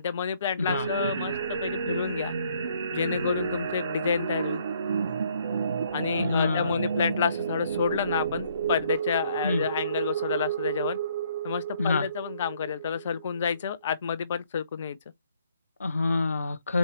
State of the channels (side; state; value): both; inverted; correlation -0.66